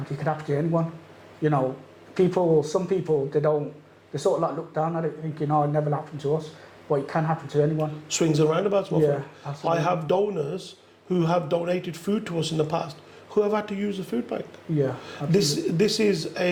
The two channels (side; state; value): both; identical; correlation 1.00